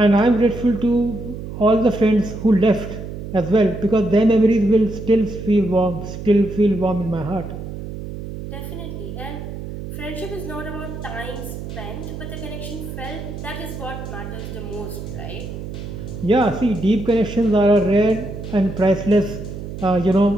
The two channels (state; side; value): noise; right; hum, 9 dB below the sound